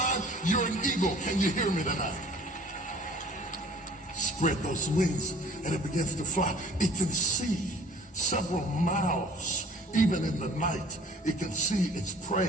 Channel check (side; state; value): both; normal; correlation 0.51